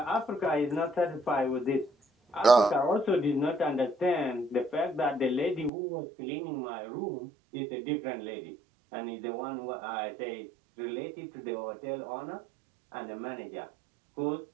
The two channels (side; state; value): left; drops out; at 5.7 s